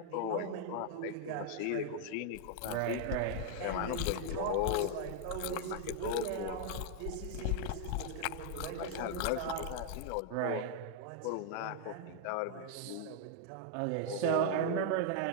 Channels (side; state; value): both; different; correlation 0.00